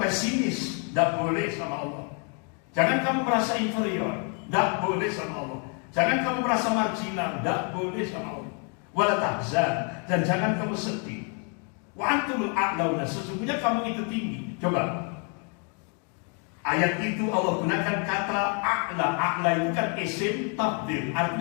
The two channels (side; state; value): right; quieter; 38.6 dB